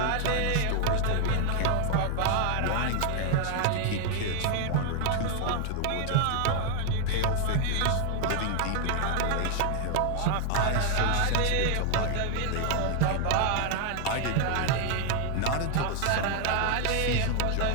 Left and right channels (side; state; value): both; different; correlation 0.00